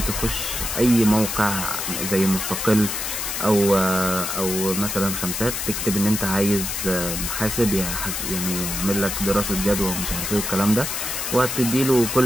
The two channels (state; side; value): noise; left; hiss, 3 dB below the sound